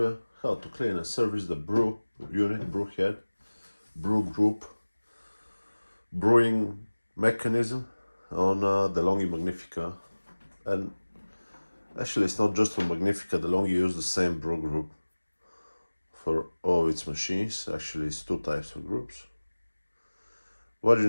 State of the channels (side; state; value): both; inverted; correlation -1.00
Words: how to clean and service the brew unit, brew head, brew group, brewing mechanism on DeLonghi Magnifica. And actually it's not just on Magnifica, DeLonghi use the same brew group for all its machines. Actually it's two types of groups. What you